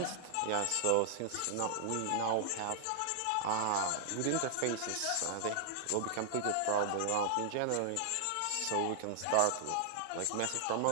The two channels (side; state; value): both; different; correlation -0.01